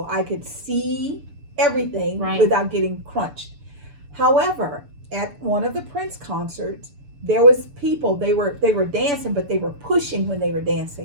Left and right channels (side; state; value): left; late; 6.9 ms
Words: I could see everything without getting crunched. However, at one of the Prince concerts, there was people, they were dancing, but they were pushing when they were